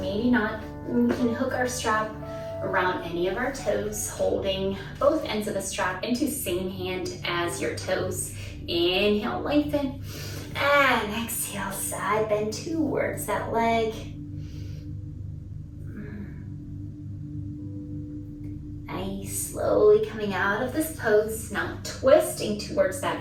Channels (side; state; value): both; identical; correlation 1.00